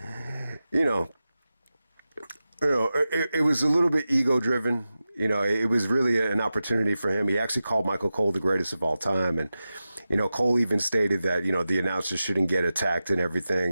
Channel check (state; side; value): inverted; both; correlation -0.93